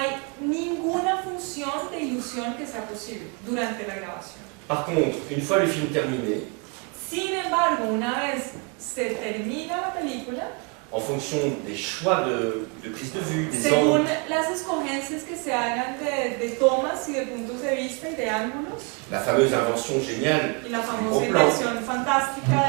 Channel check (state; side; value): quieter; left; 32.3 dB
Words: ninguna función de ilusión que sea posible durante la grabación. Par contre, une fois le film terminé, Sin embargo, una vez se termina la película, en fonction des choix de prise de vue, des según angles, las escogencias que se hagan de tomas y de puntos de vista y de ángulos, la fameuse invention géniale, y la famosa Gros plan. inversión fantástica